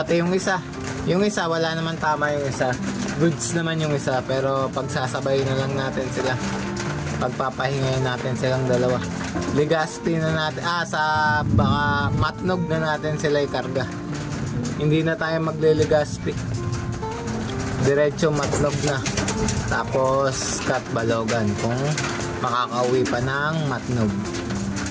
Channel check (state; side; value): identical; both; correlation 1.00